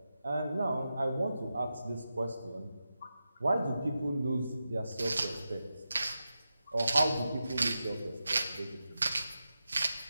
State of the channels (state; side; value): inverted; both; correlation -0.90